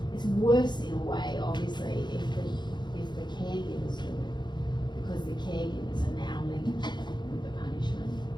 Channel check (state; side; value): late; right; 0.21 ms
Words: It's worse in a way, obviously, if the caregivers do it, because the caregivers are now linked with the punishment.